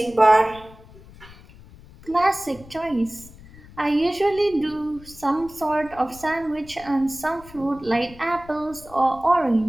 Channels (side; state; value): left; noise; rumble, 21 dB below the sound